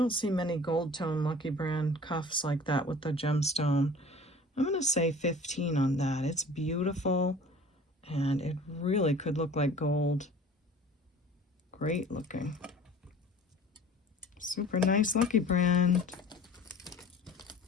see many gold tone Lucky brand cuffs like that with the gemstone. I'm going to say 15 on that. It's beautiful, and it really could look like gold. Great looking. Super nice Lucky brand.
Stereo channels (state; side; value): normal; both; correlation 0.45